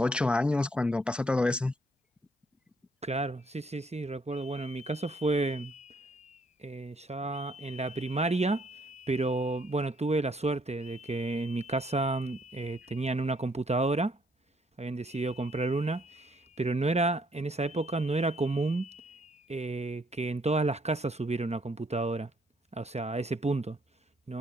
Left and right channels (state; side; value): normal; both; correlation 0.68